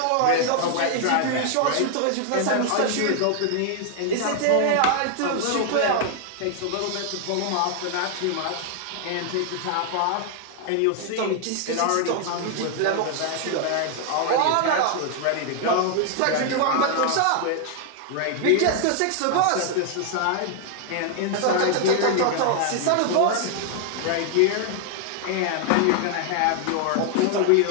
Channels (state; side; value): different; both; correlation 0.00